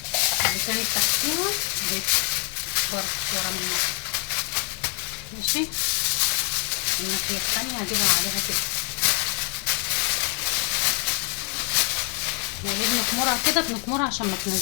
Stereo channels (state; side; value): quieter; right; 38.3 dB